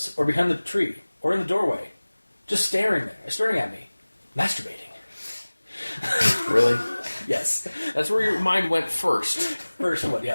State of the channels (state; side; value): inverted; both; correlation -1.00